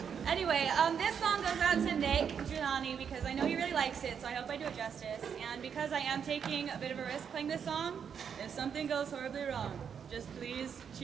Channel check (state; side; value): quieter; left; 7.4 dB